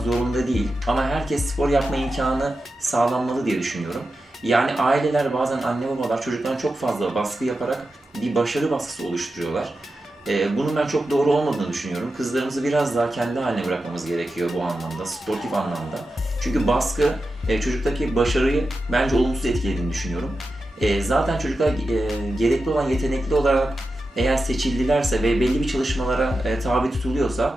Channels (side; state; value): both; normal; correlation 0.91